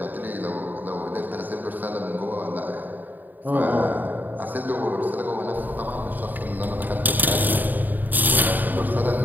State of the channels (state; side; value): late; left; 0.087 ms